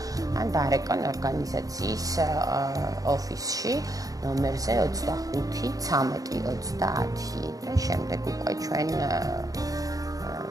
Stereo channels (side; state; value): left; late; 0.17 ms